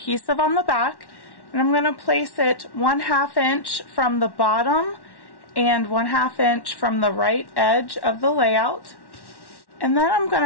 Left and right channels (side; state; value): right; late; 1.1 ms